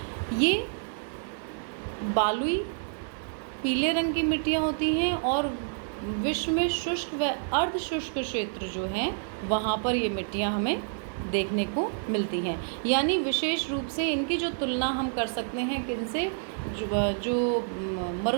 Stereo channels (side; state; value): left; silent; 59 dB below the other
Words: ये बालुई पीले रंग की मिट्टियाँ होती हैं और विश्व में शुष्क व अर्ध शुष्क क्षेत्र जो हैं वहाँ पर ये मिट्टियाँ हमें देखने को मिलती हैं। यानी विशेष रूप से इनकी जो तुलना हम कर सकते हैं किनसे, जो